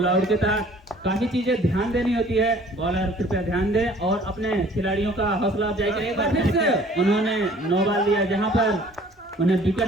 आउट के तहत काफी चीजें ध्यान देनी होती है, बॉलर कृपया ध्यान दे और अपने खिलाड़ियों का हौसला अफजाई करें। एक बार फिर से उन्होंने नो बॉल दिया जहां पर उन्हें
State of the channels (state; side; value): normal; both; correlation 0.53